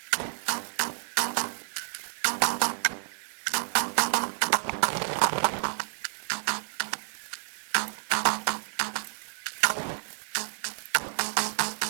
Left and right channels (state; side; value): silent; left; digital silence